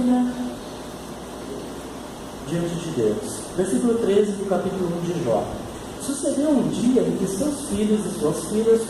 diante de Deus. Versículo 13 do capítulo 1 de Jó. Sucedeu um dia em que seus filhos e suas filhas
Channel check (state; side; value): identical; both; correlation 1.00